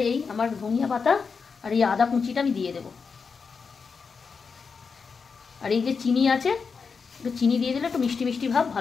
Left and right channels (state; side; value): quieter; right; 5.3 dB